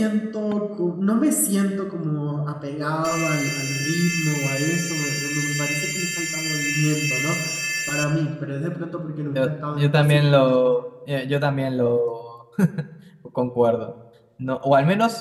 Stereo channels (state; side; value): identical; both; correlation 1.00